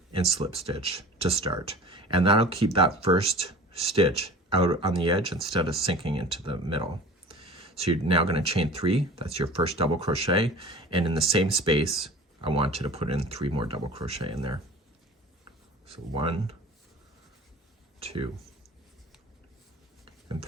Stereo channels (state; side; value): normal; both; correlation 0.41